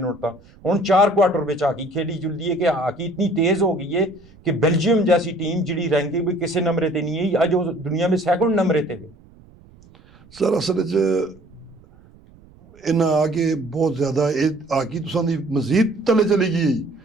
तक हुण 4 क्वार्टर विच हाकी खेड़ी जुलदी है कि हाकी इतनी तेज हो गई है कि बेल्जियम जैसी टीम जिहड़ी रैंकिंग भी किसी नंबर ते नहीं है अज वो दुनिया में 2nd नंबर ते है सर असल इन्हें आके बहुत ज्यादा हाकी तुसां दी मजीद तले चली गई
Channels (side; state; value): right; noise; rumble, 26 dB below the sound